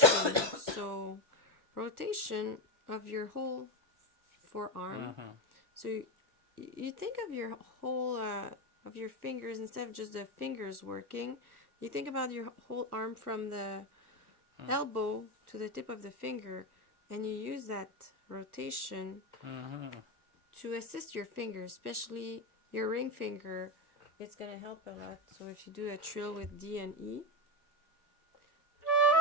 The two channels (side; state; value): left; late; 1.3 ms